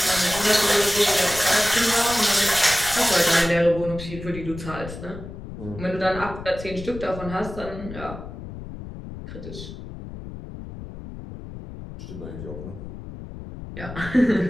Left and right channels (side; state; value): left; noise; rumble, 11 dB below the sound